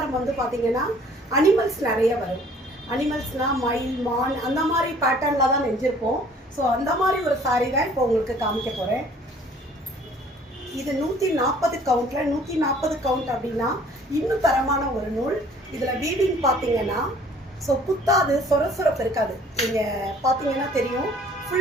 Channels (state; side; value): normal; both; correlation 0.55